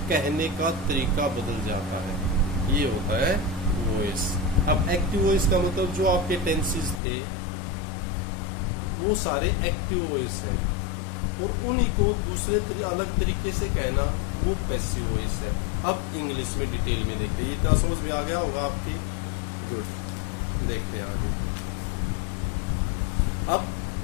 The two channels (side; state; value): right; drops out; at 7.0 s